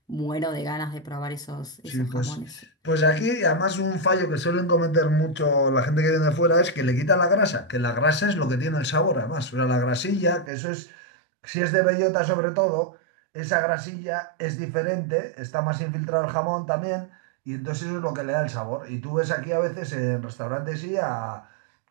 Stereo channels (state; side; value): drops out; left; at 10.5 s